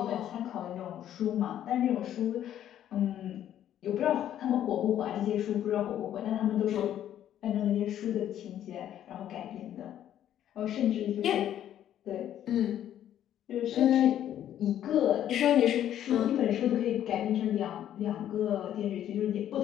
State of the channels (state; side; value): quieter; right; 11.1 dB